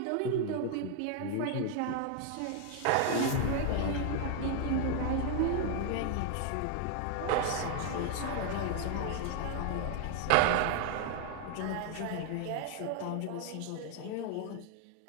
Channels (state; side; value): different; both; correlation 0.00